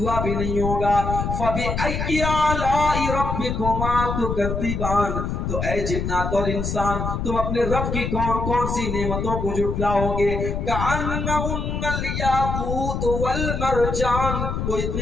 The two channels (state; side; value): noise; left; rumble, 2 dB below the sound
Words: بھی نہیں ہوگا. فبأی آلاء ربکما تکذبان، تو اے جنات اور انسان تم اپنے رب کی کون کون سی نعمتوں کو جھٹلاؤ گے. کأنہن الیاقوت والمرجان، وہ